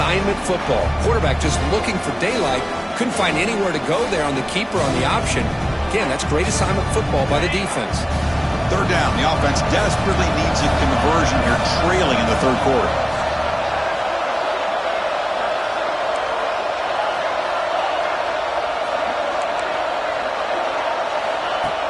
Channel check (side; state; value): both; identical; correlation 1.00